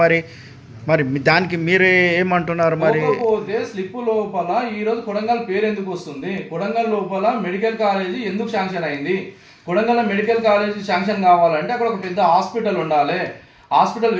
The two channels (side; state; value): both; identical; correlation 1.00